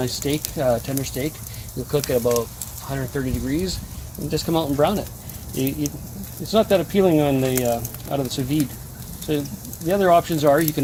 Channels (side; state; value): both; identical; correlation 1.00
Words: steak, tender steak. You'll cook at about 130 degrees and just come out and brown it. It's not that appealing on the out of the sous vide. So the other options are you